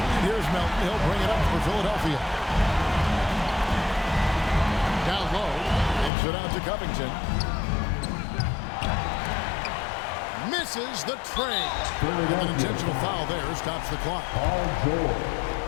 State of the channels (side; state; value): right; drops out; at 6.1 s